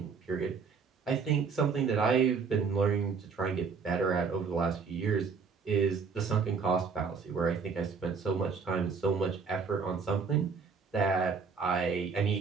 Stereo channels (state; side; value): quieter; left; 5.4 dB